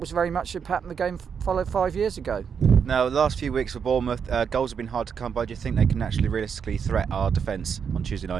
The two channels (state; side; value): quieter; left; 6.9 dB